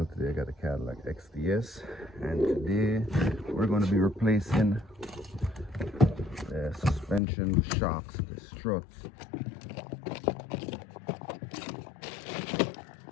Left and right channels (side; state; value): right; drops out; at 7.2 s